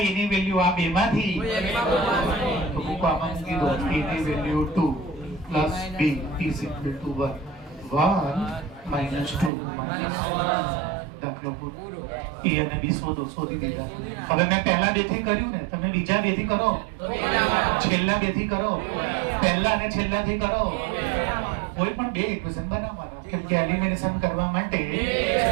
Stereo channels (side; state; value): left; drops out; at 9.5 s